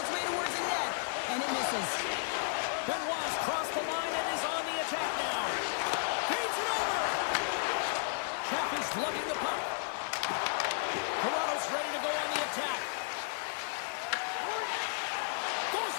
way towards the net, and it misses. Benoit's crossed the line and is on the attack now. Feeds it over. Chappie's lugging the puck. Toronto's ready to go on the attack. Goes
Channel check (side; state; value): right; silent; digital silence